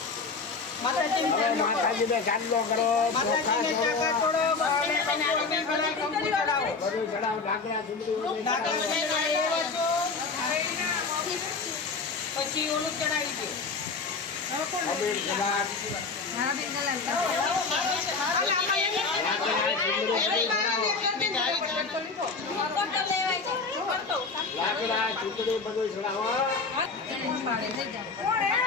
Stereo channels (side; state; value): right; quieter; 4.4 dB